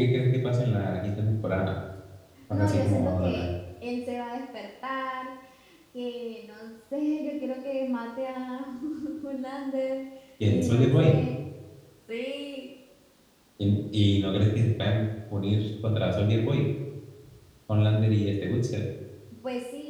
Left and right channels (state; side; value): identical; both; correlation 1.00